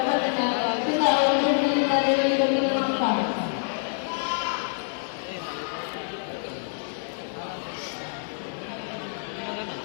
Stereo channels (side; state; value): right; silent; digital silence